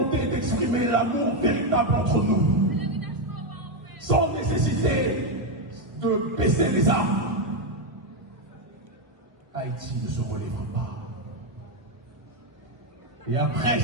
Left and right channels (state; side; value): late; left; 1.3 ms